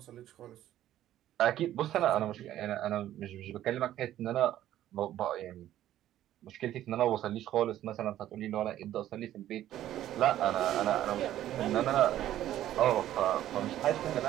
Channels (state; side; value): quieter; left; 12.7 dB